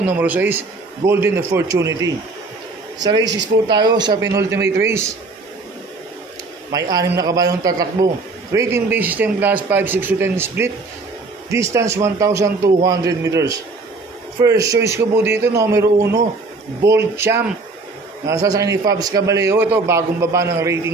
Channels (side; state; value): left; quieter; 3.6 dB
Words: numero 6, Golden Opportunity. Sa races po tayo, sa penultimate race, may 6 na kabayong tatakbo. Rating base system class 5, 6 to 10 split. Distance 1,200 meters. First choice ko po dito, numero 1, Bold Champ. Nasa sa ni Fabs Caballero. Ito, bagong baba ng